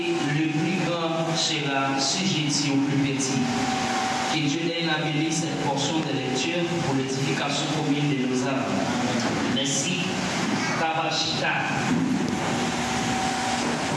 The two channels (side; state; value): both; identical; correlation 1.00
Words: le plus grand sera sujetti au plus petit. Que Dieu ait béni cette portion de lecture pour l'édification commune de nos âmes. Merci. Kabashita.